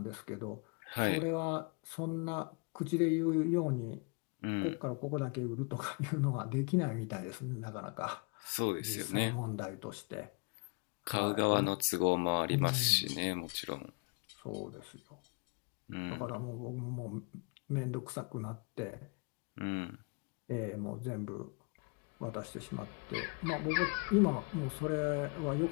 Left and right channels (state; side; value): quieter; right; 34.6 dB